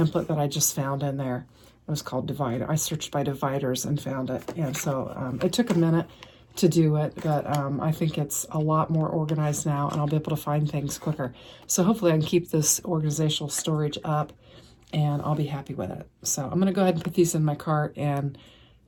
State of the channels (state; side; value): identical; both; correlation 1.00